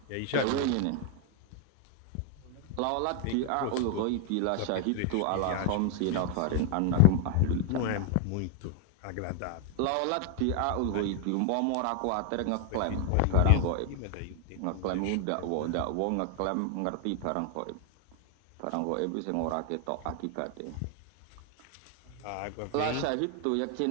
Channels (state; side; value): different; both; correlation 0.01